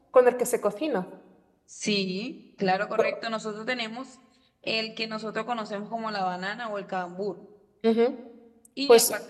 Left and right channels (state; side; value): identical; both; correlation 1.00